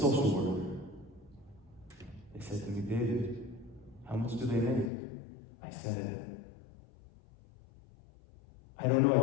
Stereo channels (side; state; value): right; drops out; at 4.9 s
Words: worker. They said to me, David, how much do they make? I said, I don't know, I